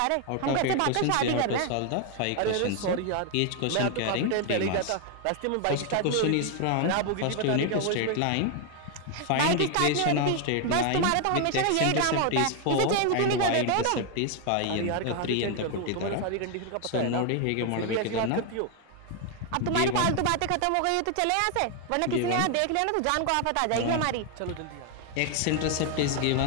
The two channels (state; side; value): different; both; correlation 0.01